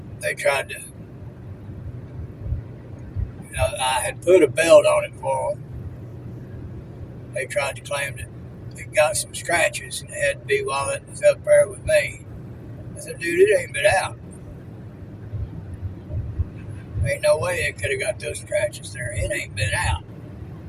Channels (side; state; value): both; identical; correlation 1.00